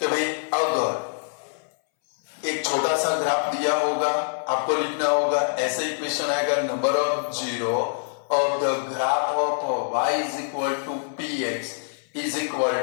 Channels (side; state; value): right; silent; 62 dB below the other